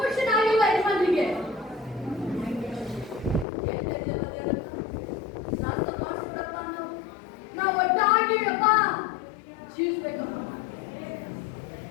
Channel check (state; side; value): drops out; right; at 3.5 s